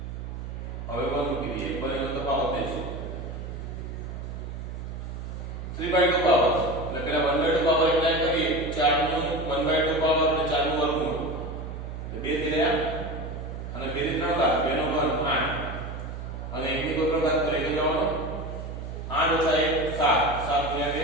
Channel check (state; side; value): noise; right; hum, 8 dB below the sound